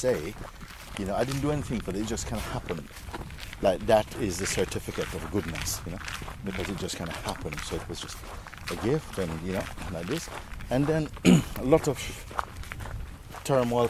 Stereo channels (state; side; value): identical; both; correlation 1.00